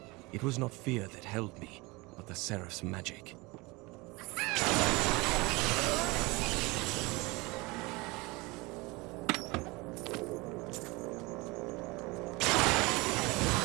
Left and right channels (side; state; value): left; quieter; 24.4 dB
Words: it was not fear that held me, but the seraph's magic.